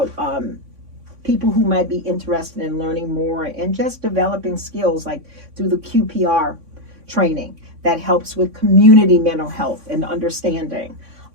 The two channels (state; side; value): late; left; 3.6 ms